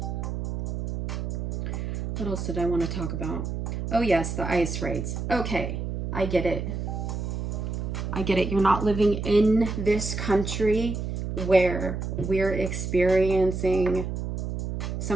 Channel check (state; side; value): noise; right; hum, 4 dB below the sound